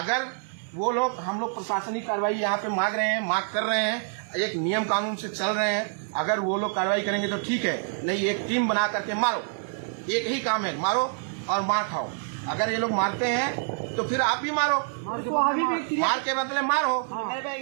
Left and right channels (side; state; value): left; silent; digital silence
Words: वो लोग, हम लोग प्रशासनिक कार्रवाई यहाँ पे मांग कर रहे हैं, एक नियम कानून से चल रहे हैं, अगर वो लोग कार्रवाई करेंगे तो ठीक है, नहीं एक टीम बना करके मारो, एक ही काम है, मारो और मार खाओ। अगर ये लोग मारते हैं तो फिर आप भी मारो, मार के बदले मारो।